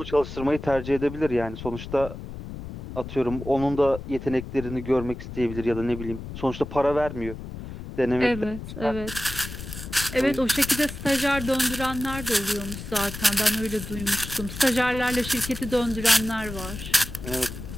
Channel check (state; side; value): noise; left; rumble, 10 dB below the sound